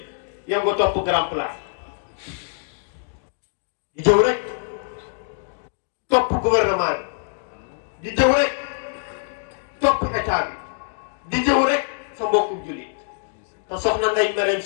yow nga topp grand place di jëw rek topp gouvernement bi di jëw rek topp état bi di jëw rek sa mbokku jullit te soxna Ndeye Marème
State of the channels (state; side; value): silent; right; digital silence